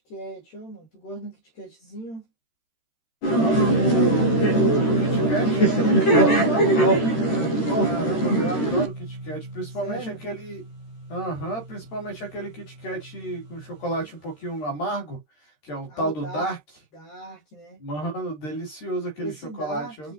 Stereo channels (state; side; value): late; right; 13 ms